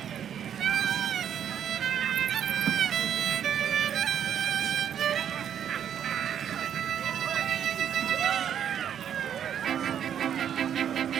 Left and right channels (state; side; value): quieter; left; 9.2 dB